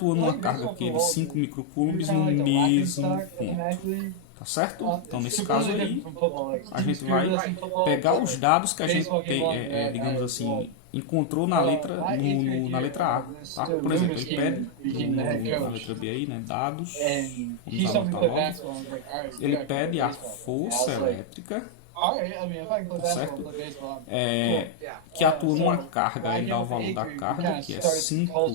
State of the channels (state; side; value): different; both; correlation 0.00